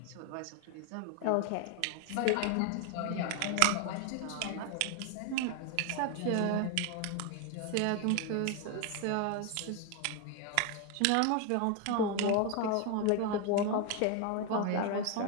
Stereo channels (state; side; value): different; both; correlation 0.01